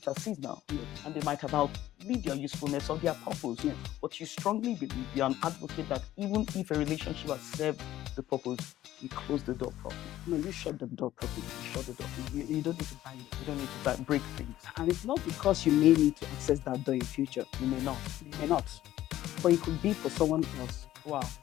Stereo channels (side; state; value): right; quieter; 13.9 dB